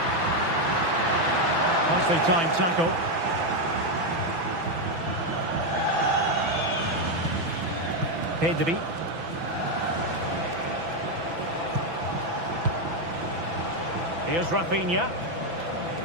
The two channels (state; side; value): late; left; 6.0 ms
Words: Nicely timed tackle. Pedri. Here's Rafinha.